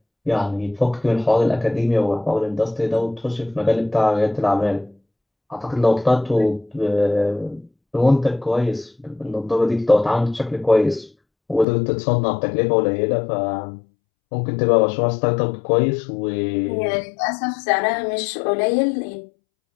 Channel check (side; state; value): right; drops out; at 11.7 s